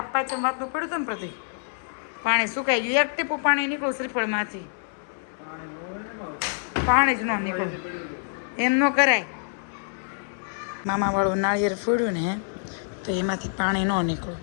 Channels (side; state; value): right; silent; digital silence